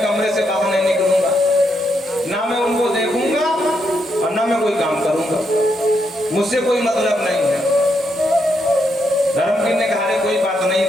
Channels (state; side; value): normal; both; correlation 0.79